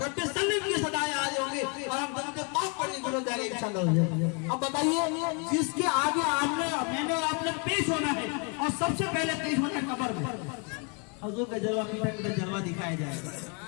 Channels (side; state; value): right; quieter; 35.3 dB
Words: सल्लम की सदाएं आ जाएंगे और हम दम पे माफ पढ़ने गुजर जाएंगे इंशाल्लाह। अब बताइए, जिसके आगे आपने मैंने और आपने पेश होना है और सबसे पहले पेश होना है कब्र में, हुजूर का जलवा मीठा मीठा जलवा दिखाया जाएगा।